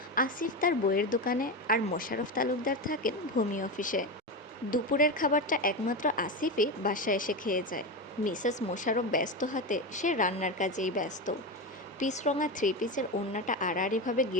আসিফ তার বইয়ের দোকানে, আর মোশাররফ তালুকদার থাকেন ভূমি অফিসে। দুপুরের খাবারটা একমাত্র আসিফই বাসায় এসে খেয়ে যায়। মিসেস মোশাররফ ব্যস্ত হাতে সে রান্নার কাজেই ব্যস্ত। পিচরঙা থ্রি পিসের ওড়নাটা আড়াআড়িভাবে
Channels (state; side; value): normal; both; correlation 0.17